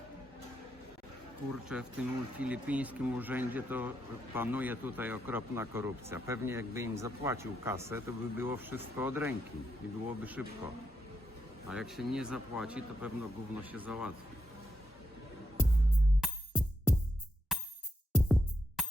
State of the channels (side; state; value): both; normal; correlation 0.82